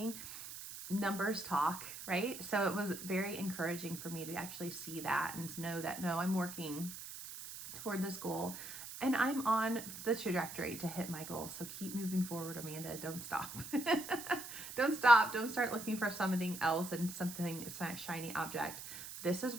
numbers talk, right? So it was very encouraging for me to actually see that and know that, no, I'm working toward this goal. And I'm on the trajectory to hit my goal. So keep moving forward, Amanda. Don't stop. Don't stop. Don't start looking for something else and something, it's not a shiny object. This is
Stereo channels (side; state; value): right; noise; hiss, 10 dB below the sound